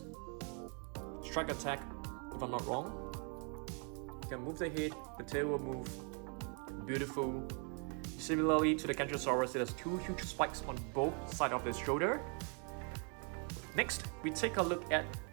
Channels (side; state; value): left; quieter; 38.2 dB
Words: strike attack, if I'm not wrong. You can move the head, the tail will move. Beautiful. Similarly to the Colossal, it has two huge spikes on both sides of his shoulder. Next, we take a look at